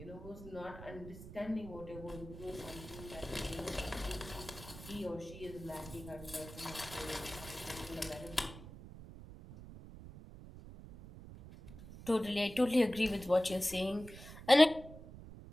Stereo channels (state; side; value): noise; right; rumble, 14 dB below the sound